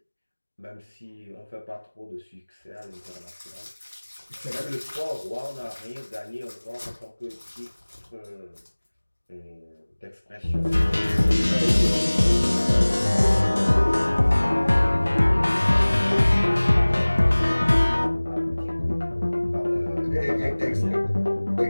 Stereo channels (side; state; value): both; inverted; correlation -1.00